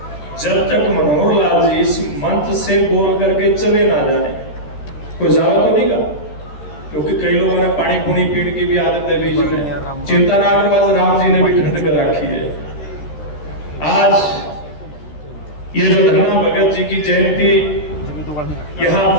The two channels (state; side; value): late; right; 13 ms